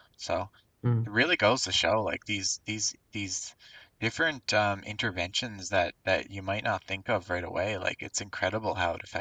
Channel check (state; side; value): identical; both; correlation 1.00